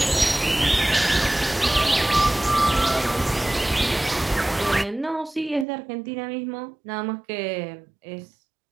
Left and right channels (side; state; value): left; drops out; at 5.7 s